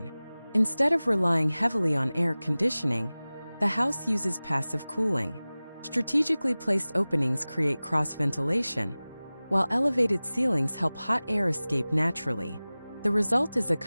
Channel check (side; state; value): both; inverted; correlation -0.98